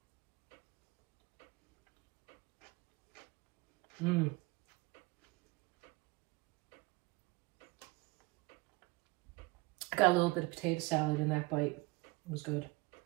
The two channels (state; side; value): quieter; left; 23.7 dB